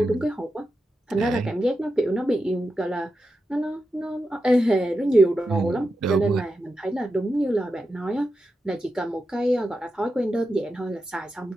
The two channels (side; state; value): both; normal; correlation 0.89